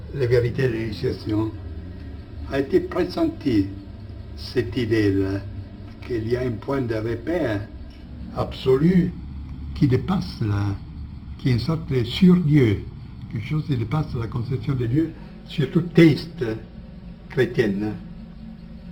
les vérités de l'initiation, a été pressenti cette idée-là, qu'il y a un point de repère absolu qui dépasse qui est une sorte de sur-Dieu, quelque chose qui dépasse la conception de Dieu, surtout théiste chrétienne,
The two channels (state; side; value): identical; both; correlation 1.00